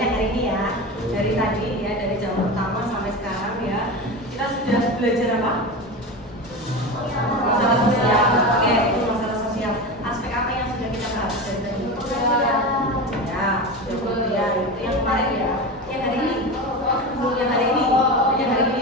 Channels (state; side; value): normal; both; correlation 0.24